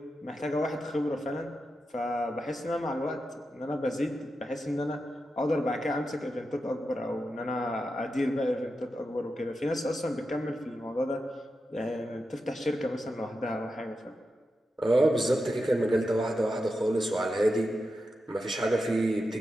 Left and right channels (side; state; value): both; normal; correlation 0.89